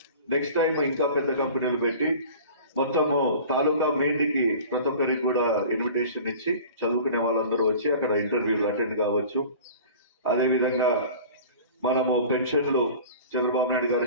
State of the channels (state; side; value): inverted; both; correlation -0.41